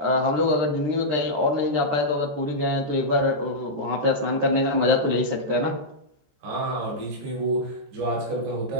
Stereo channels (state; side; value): late; left; 13 ms